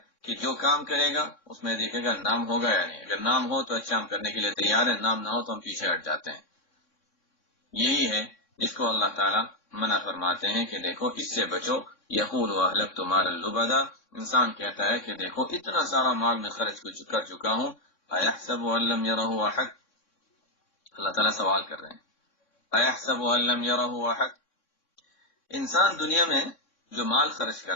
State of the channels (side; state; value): right; late; 3.6 ms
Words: کہ جو کام کرے گا اس میں دیکھے گا نام ہوگا یا نہیں، اگر نام ہو تو اچھا ہم کرنے کے لیے تیار ہیں، نام نہ ہو تو ہم پیچھے ہٹ جاتے ہیں۔ یہی ہے جس کو اللہ تعالیٰ منع فرماتے ہیں کہ دیکھو اس سے بچو۔ یقول اہلکت مالا لبدا، انسان کہتا ہے کہ دیکھو اتنا سارا مال میں خرچ کر چکا ہوں، ایحسب ان لم یرہ احد، اللہ تعالیٰ سوال کر رہے ہیں، ایحسب ان لم یرہ احد، انسان دنیا میں جو مال خرچ